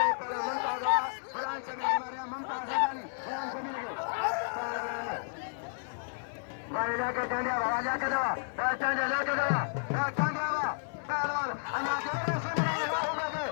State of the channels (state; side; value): silent; right; digital silence